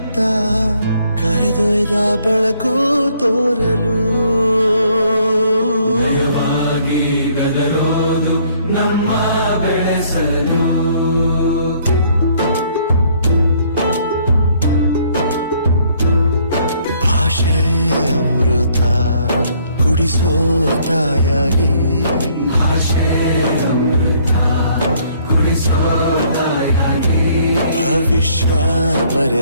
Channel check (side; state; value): both; inverted; correlation -0.64